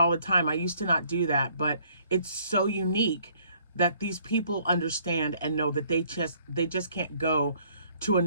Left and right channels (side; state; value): both; inverted; correlation -0.62